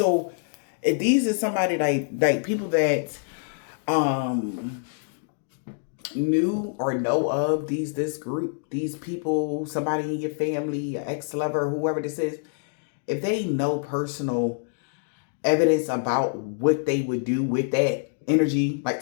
if these are somebody like people that knew or know of this group, these people, somebody in your family, ex-lover, whoever this is, if they know personal evidence about what they would do with that energy, like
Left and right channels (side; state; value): right; silent; digital silence